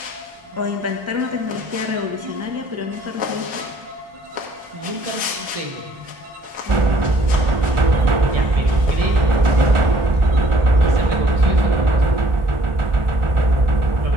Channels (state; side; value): late; left; 1.4 ms